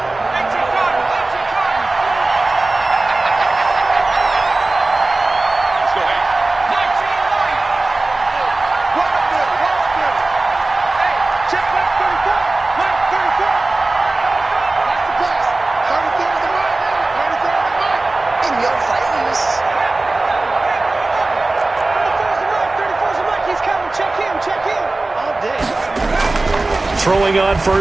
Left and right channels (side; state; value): left; quieter; 3.1 dB